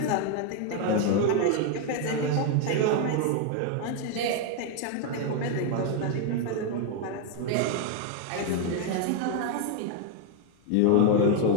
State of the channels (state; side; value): different; both; correlation 0.01